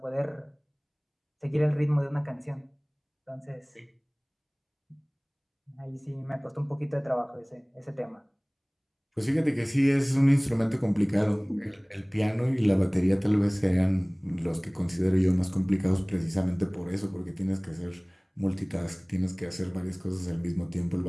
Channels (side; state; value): both; identical; correlation 1.00